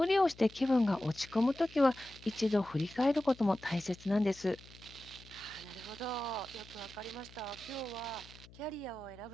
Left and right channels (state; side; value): noise; left; hum, 21 dB below the sound